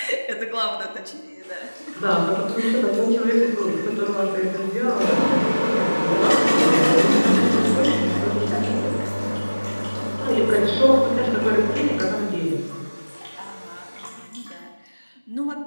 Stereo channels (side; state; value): both; inverted; correlation -1.00